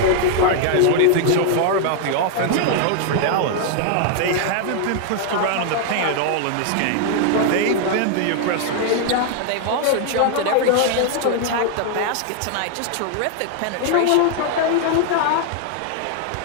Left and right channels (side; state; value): both; different; correlation 0.00